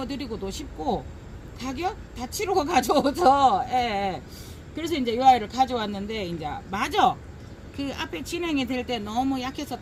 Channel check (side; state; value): both; identical; correlation 1.00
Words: 싶고, 가격 다 치르고 가져오죠. 예, 예. 그래서 이제 이 아이를 가져왔는데 이제 마저 그 앞에 진행이 될 때 너무